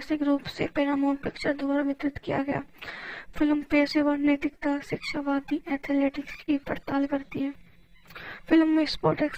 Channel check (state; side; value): identical; both; correlation 1.00